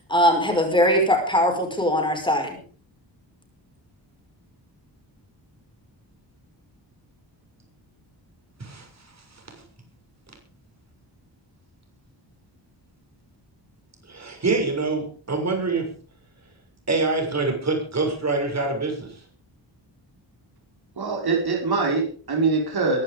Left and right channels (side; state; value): both; normal; correlation 0.06